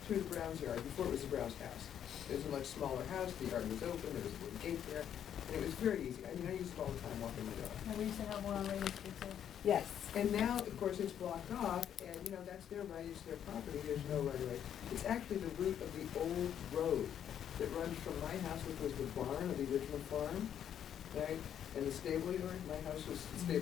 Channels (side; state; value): right; quieter; 9.5 dB